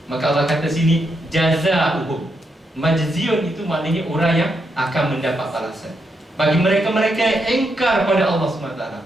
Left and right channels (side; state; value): both; normal; correlation 0.81